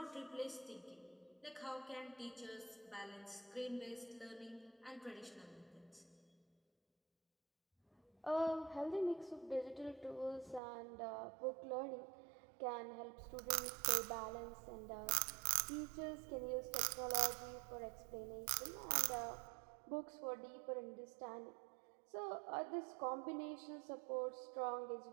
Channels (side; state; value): left; drops out; at 10.6 s